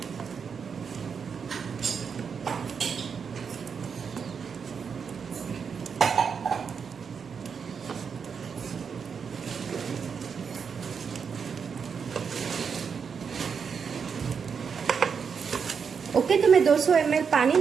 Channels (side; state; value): left; quieter; 6.3 dB